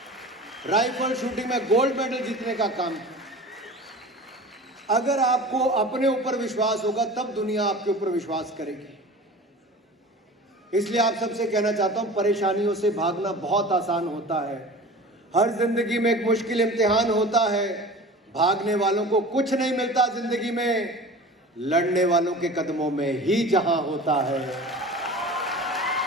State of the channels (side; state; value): both; normal; correlation 0.38